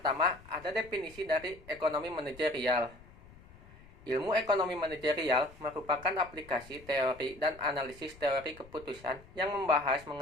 ada definisi dari ekonomi manajerial. Ilmu ekonomi manajerial merupakan aplikasi teori dan analisis teori keputusan yang membahas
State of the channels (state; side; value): noise; left; rumble, 21 dB below the sound